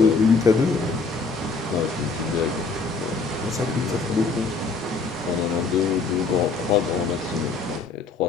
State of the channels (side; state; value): right; quieter; 4.3 dB